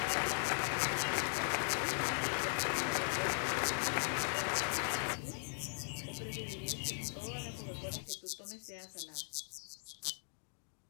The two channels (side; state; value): right; silent; digital silence